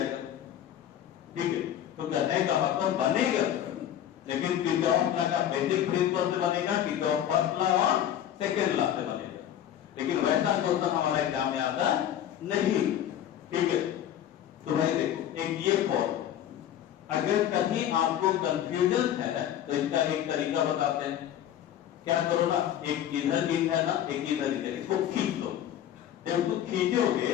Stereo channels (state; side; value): quieter; right; 10.9 dB